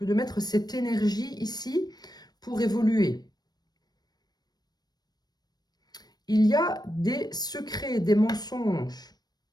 de mettre cette énergie ici pour évoluer. Il y a des secrets, des mensonges.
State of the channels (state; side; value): late; right; 0.19 ms